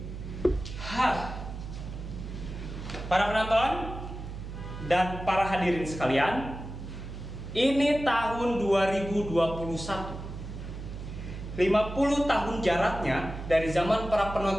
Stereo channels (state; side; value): noise; right; hum, 9 dB below the sound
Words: para penonton dan para hadirin sekalian, ini tahun 2021. 50 tahun jaraknya dari zaman para